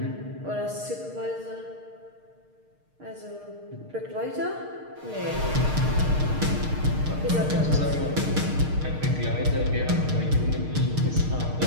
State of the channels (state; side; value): late; left; 6.5 ms